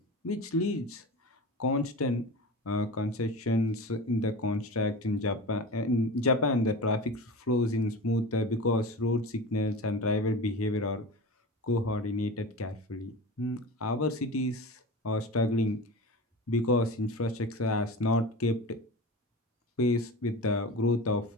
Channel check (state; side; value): normal; both; correlation 0.31